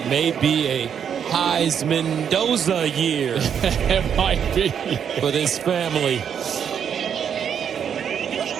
may be a Heisman Mendoza year. It might be. For this family.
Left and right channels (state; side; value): quieter; left; 8.0 dB